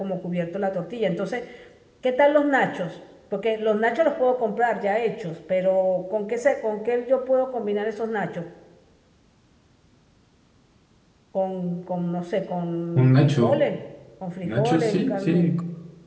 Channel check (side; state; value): both; identical; correlation 1.00